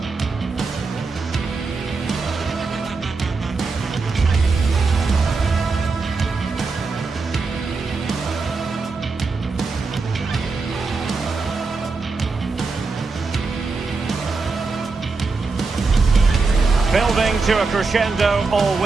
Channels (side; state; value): left; quieter; 4.2 dB